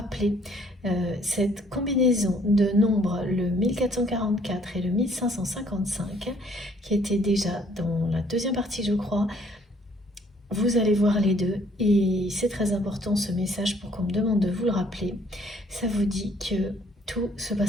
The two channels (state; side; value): normal; both; correlation 0.62